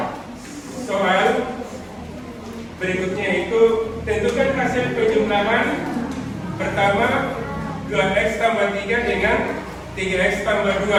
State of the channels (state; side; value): identical; both; correlation 1.00